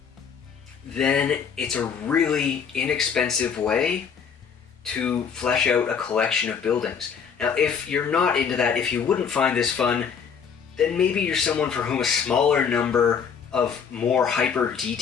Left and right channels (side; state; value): right; quieter; 6.8 dB